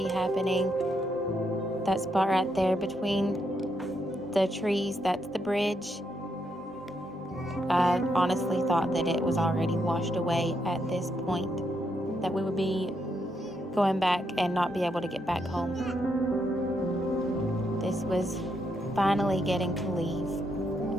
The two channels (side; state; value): both; normal; correlation 0.79